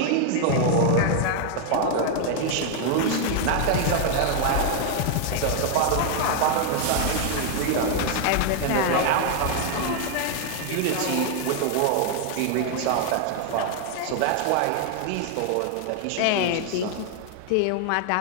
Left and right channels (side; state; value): both; different; correlation 0.00